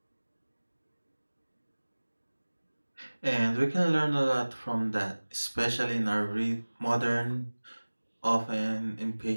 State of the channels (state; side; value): inverted; both; correlation -1.00